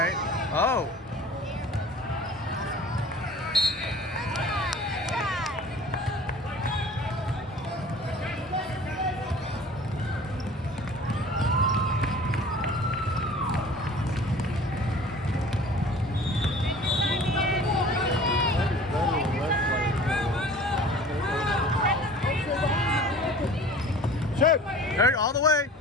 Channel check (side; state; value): both; normal; correlation 0.45